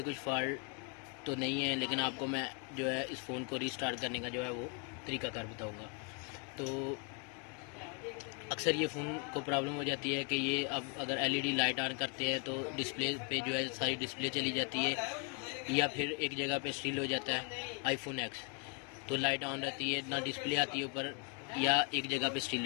कुछ फॉल्ट तो नहीं है, लेकिन आपको मैं जो है इस फ़ोन को रीस्टार्ट करने का जो है वो तरीकाकार बताऊंगा। तो अक्सर ये फ़ोन को प्रॉब्लम हो जाती है कि ये अब अगर एलईडी लाइट ऑन करते हैं तो डिस्प्ले पे जो है सारी डिस्प्ले चली जाती है, या फिर एक जगह पे स्टिल हो जाता है आईफोन एक्स। तो लाइट ऑन रहती है, ना डिस्प्ले आती है ऊपर, या एक जगह पे स्टिल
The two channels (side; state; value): right; quieter; 34.3 dB